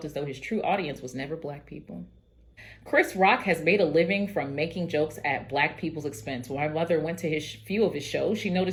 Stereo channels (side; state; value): both; identical; correlation 1.00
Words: as though his true audience was never Black people. Chris Rock has made a living from making jokes at Black people's expense. When my mother went to his few of his shows, she